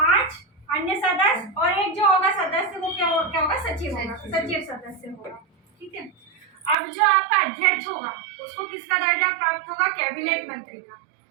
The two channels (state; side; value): drops out; left; at 6.8 s